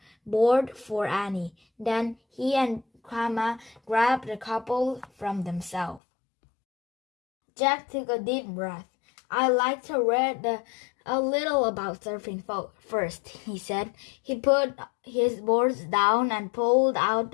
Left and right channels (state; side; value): drops out; right; at 6.0 s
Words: board for Annie. Then he and Kama grabbed the couple from themselves. Jack took a deep breath. I like to read a little about surfing first, he said. He put his boards down and pulled out